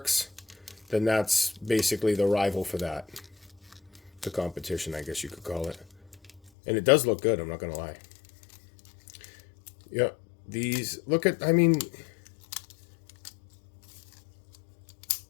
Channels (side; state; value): right; drops out; at 6.5 s